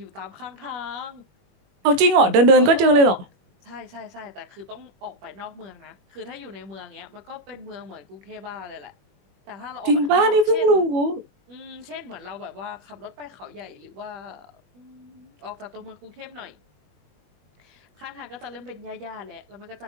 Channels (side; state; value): left; late; 21 ms